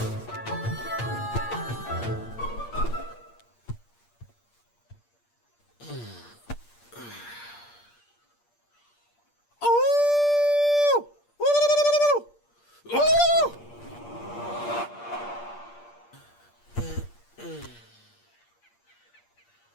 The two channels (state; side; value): late; right; 8.5 ms